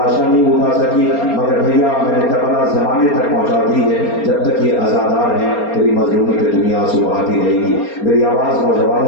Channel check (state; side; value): late; right; 4.3 ms